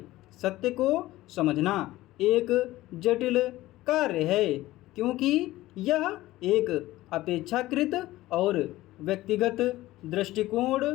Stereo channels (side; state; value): right; quieter; 16.8 dB